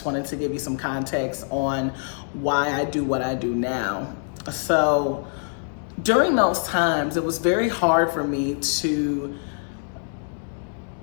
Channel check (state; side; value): silent; right; 62 dB below the other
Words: wanted to give you some context on why I do what I do now. So during those times, it was very hard for me to